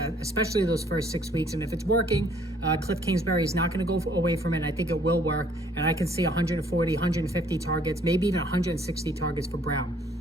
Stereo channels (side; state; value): both; normal; correlation 0.61